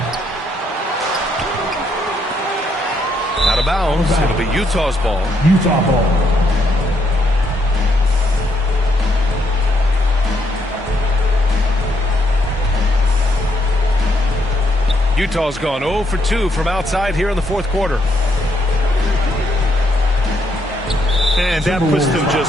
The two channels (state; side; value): normal; both; correlation 0.74